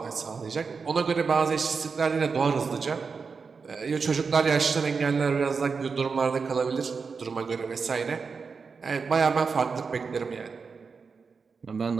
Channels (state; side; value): quieter; left; 5.2 dB